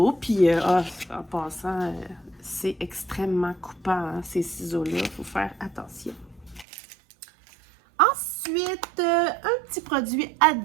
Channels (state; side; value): drops out; left; at 6.7 s